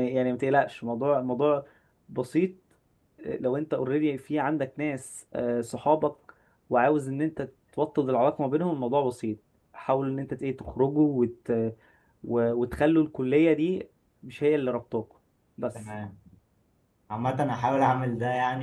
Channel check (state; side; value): identical; both; correlation 1.00